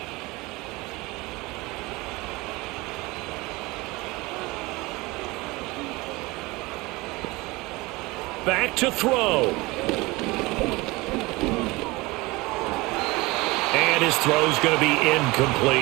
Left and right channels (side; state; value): left; quieter; 22.7 dB